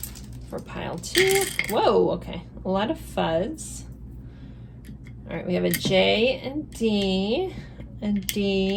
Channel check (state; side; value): identical; both; correlation 1.00